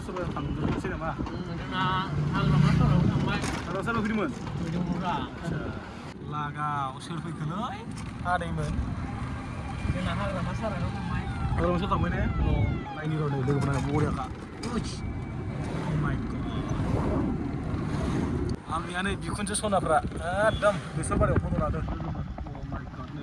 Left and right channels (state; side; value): identical; both; correlation 1.00